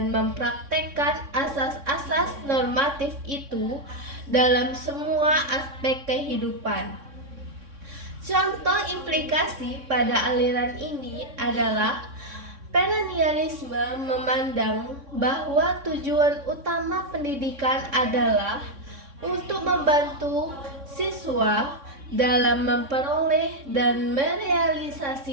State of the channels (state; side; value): late; left; 3.6 ms